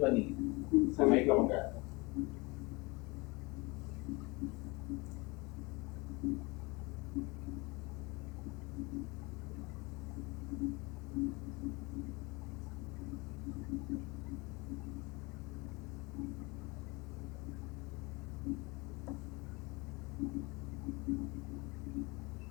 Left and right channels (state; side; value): quieter; right; 25.9 dB